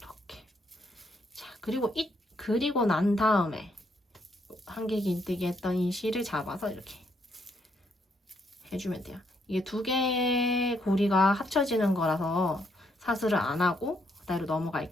자, 그리고 난 다음에 한길긴뜨기 했던 이 실을 잡아서 이렇게 해주면 돼요. 이게 2개의 고리가 합쳐지는 거라서 사슬을 안 하고 그대로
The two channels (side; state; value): both; normal; correlation 0.74